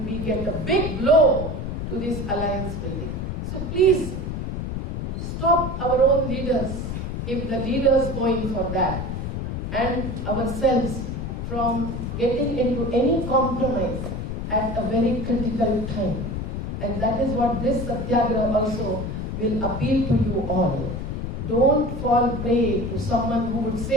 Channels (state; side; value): noise; left; rumble, 4 dB below the sound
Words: we get a big blow to this alliance building. So please stop our own leaders if the leaders go in for that and ourselves from getting into any compromise at a very critical time. And that is what this Satyagraha also will appeal to you all. Don't fall prey to someone who would